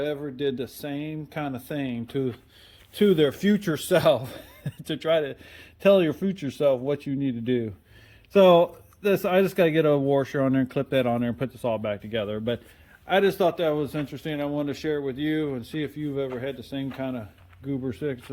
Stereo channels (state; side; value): identical; both; correlation 1.00